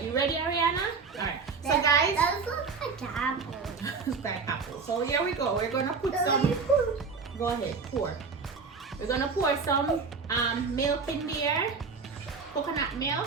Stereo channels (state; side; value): quieter; left; 4.9 dB